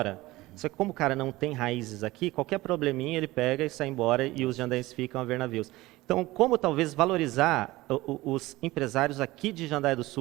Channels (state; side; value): quieter; left; 19.0 dB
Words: só que como o cara não tem raízes aqui, qualquer probleminha ele pega e sai embora e os jandaienses ficam a ver navios. Então, como talvez valorizar os empresários aqui de Jandaia do